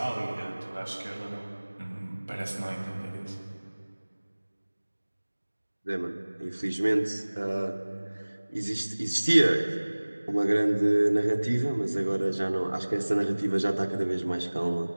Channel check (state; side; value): inverted; both; correlation -1.00